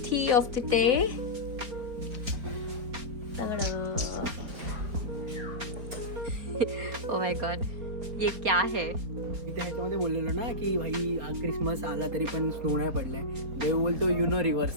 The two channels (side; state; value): left; late; 4.3 ms